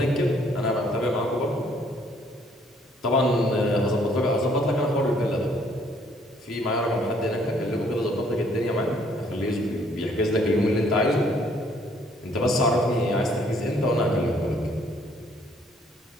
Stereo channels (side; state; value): both; normal; correlation 0.64